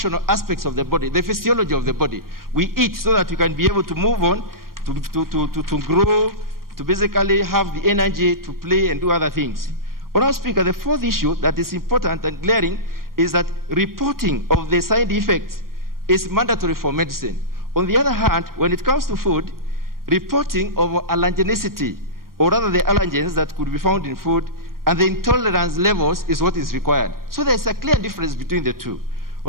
aspects of the body, the physiology of the body. We eat so that we can be able to move on, to grow, to basically have the energy to play and do other things. Honourable Speaker, the fourth issue that is important and glaring is that reporting of the side effects is mandatory for medicine. On the other hand, when it comes to food, reporting of allergenicity, or rather the allergens that could be found in food, and the intolerance levels is what is required. So there's a clear difference between the two.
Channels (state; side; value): late; left; 0.92 ms